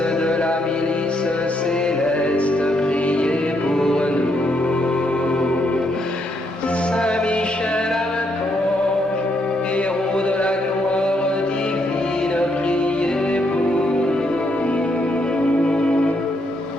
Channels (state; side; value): normal; both; correlation 0.76